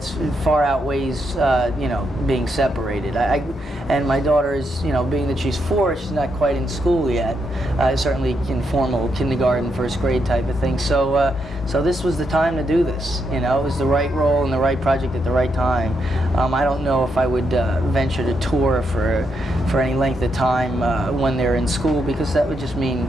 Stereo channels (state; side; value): normal; both; correlation 0.80